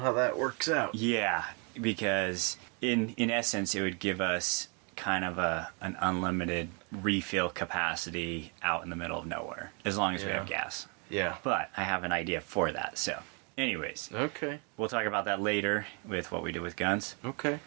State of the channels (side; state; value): left; quieter; 34.9 dB